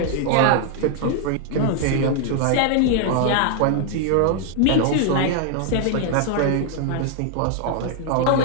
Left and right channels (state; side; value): different; both; correlation 0.00